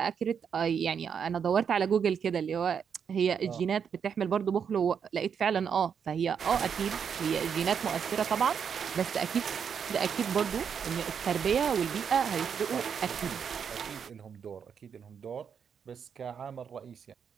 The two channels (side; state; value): left; quieter; 7.2 dB